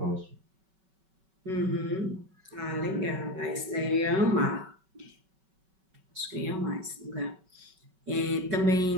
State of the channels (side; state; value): left; late; 5.3 ms